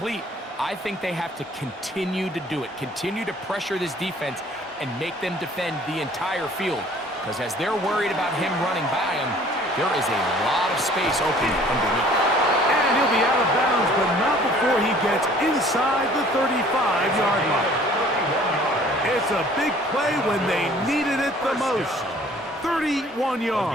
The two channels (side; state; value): both; normal; correlation 0.54